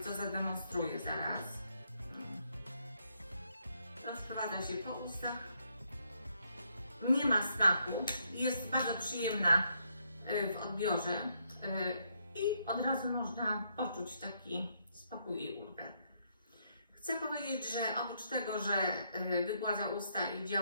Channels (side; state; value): both; inverted; correlation -0.74